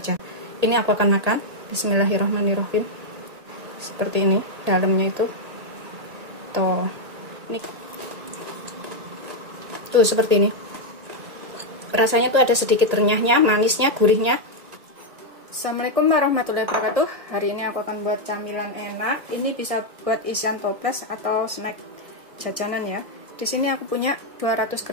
Ini aku akan makan. Bismillahirrahmanirrahim. Seperti ini dalamnya itu. Tuh. Ini. Tuh seperti ini. Rasanya tuh ada sedikit renyahnya, manisnya, gurihnya. Assalamualaikum warahmatullahi wabarakatuh. Hari ini aku akan buat camilan enak. Ini bisa buat isian toples atau snack jajanan ya. Di sini aku punya 200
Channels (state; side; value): late; left; 1.8 ms